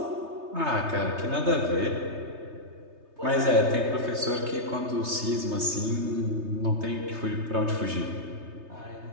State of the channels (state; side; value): late; left; 3.3 ms